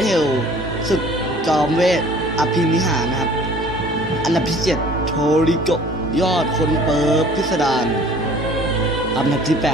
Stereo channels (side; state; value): both; normal; correlation 0.51